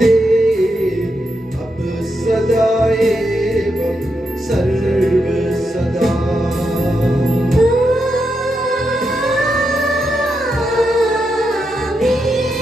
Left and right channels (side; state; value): both; normal; correlation 0.84